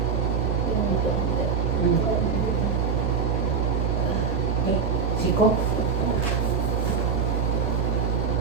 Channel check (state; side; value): quieter; left; 5.8 dB